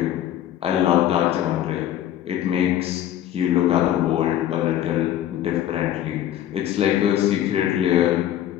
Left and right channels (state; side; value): quieter; right; 11.8 dB